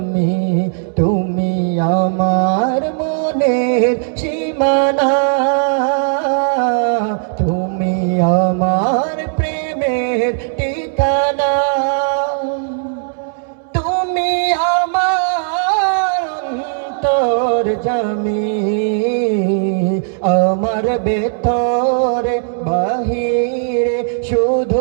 তুমি আমার মনের সীমানা, তুমি আমার প্রেমের ঠিকানা, তুমি আমার অন্তর্যামী। আমার ভেতরে বাহিরে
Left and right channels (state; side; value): silent; left; 68 dB below the other